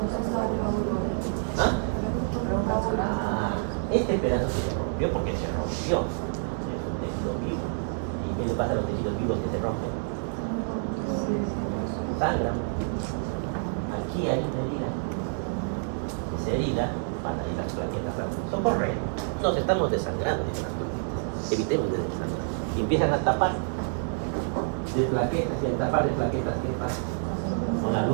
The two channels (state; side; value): silent; left; digital silence